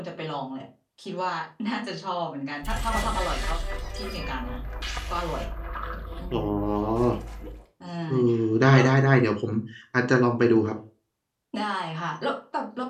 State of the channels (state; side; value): identical; both; correlation 1.00